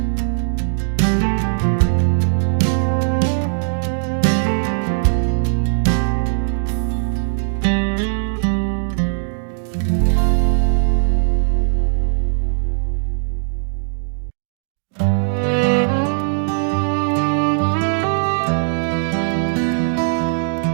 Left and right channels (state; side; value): silent; left; digital silence